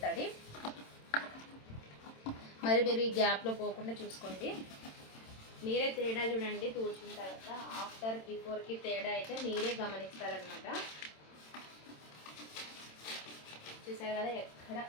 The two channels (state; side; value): late; right; 27 ms